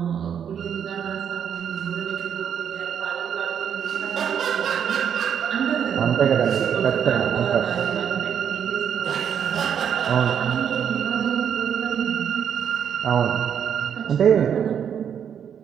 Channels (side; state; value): left; quieter; 8.3 dB